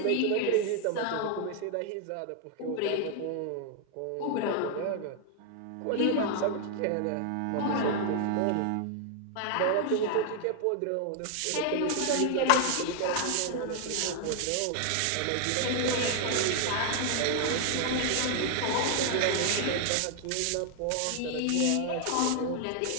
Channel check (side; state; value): both; different; correlation 0.00